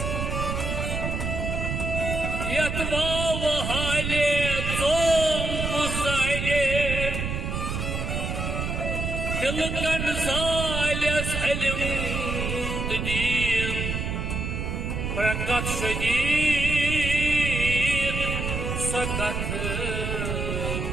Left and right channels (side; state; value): right; noise; rumble, 2 dB below the sound